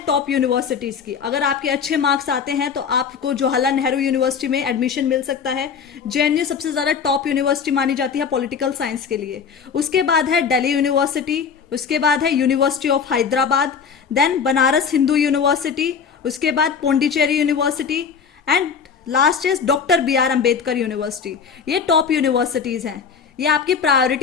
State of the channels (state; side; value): quieter; right; 6.4 dB